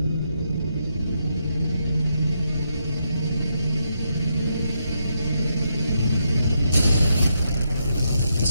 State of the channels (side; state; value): both; inverted; correlation -0.80